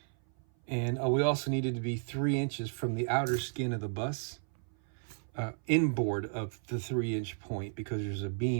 And we also needed to be 3 inches from the outer skin of the bus, inboard of the 3-inch point, because there's a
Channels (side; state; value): left; silent; 55 dB below the other